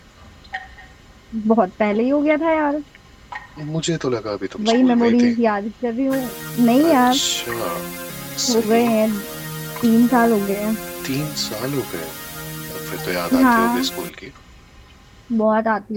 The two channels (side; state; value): both; identical; correlation 1.00